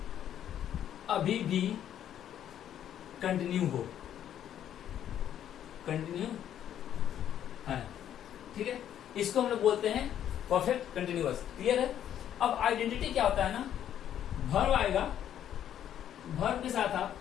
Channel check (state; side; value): quieter; right; 10.4 dB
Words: अभी भी कंटिन्यू हो, कंटिन्यू है। ठीक है, इसको हम लोग बोलते हैं परफेक्ट कंटिन्यूअस। क्लियर है। अब आइडेंटिटी क्या होता है ना, वर्ब आएगा, वर्ब के साथ आप